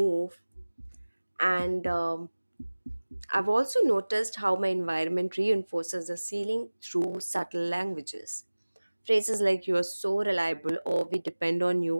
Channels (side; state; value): both; inverted; correlation -1.00